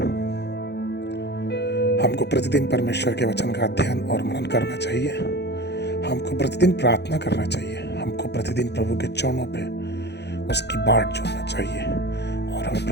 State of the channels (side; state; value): right; late; 0.49 ms